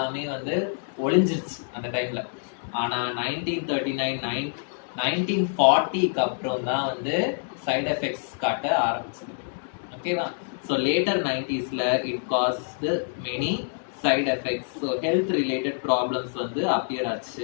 வந்து ஒளிஞ்சிருச்சு அந்த டைம்ல. ஆனா 1939 1940க்கு அப்புறம் தான் வந்து சைடு எஃபெக்ட்ஸ் காட்ட ஆரம்பிச்சது. ஓகேவா? ஸோ லேட்டர் 90sல it caused many side effects. So health related problems வந்து அப்பியர்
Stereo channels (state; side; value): silent; right; digital silence